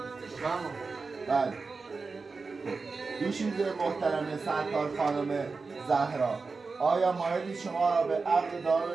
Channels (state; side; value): quieter; left; 4.3 dB